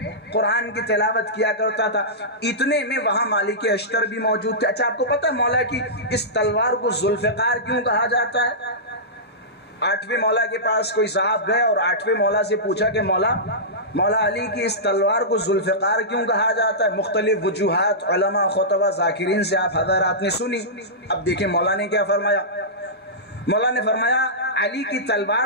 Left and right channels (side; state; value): both; normal; correlation -0.16